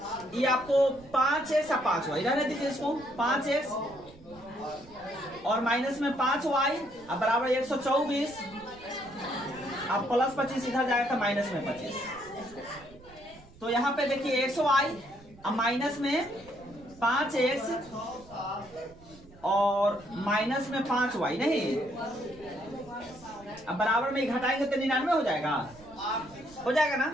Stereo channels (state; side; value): noise; right; rumble, 23 dB below the sound